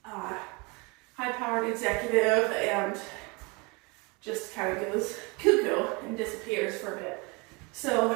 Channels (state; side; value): quieter; left; 28.5 dB